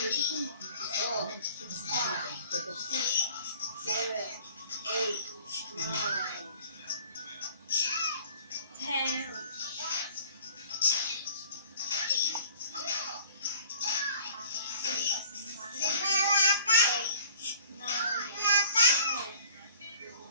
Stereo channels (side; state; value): both; inverted; correlation -0.49